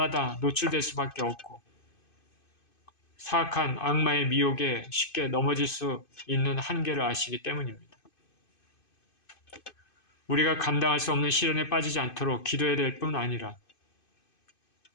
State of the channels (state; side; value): late; right; 2.5 ms